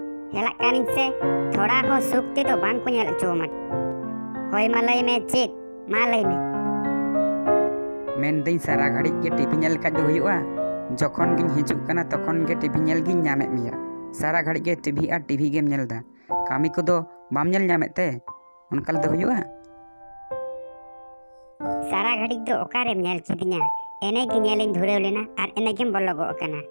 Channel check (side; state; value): both; inverted; correlation -1.00